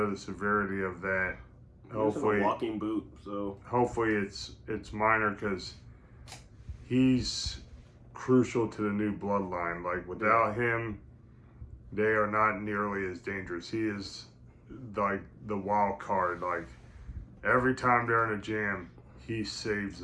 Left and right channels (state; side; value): identical; both; correlation 1.00